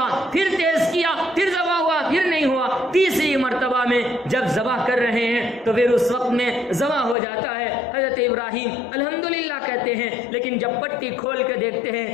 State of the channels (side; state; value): right; drops out; at 7.2 s